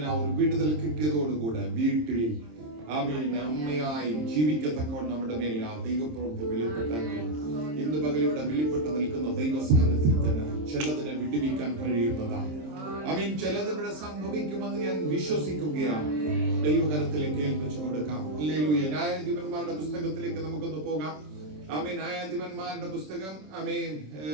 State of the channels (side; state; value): left; late; 26 ms